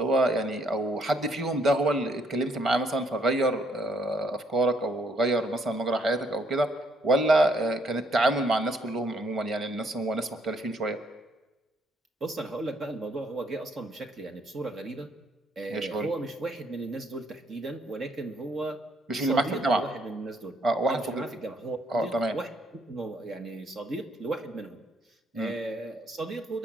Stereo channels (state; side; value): normal; both; correlation 0.69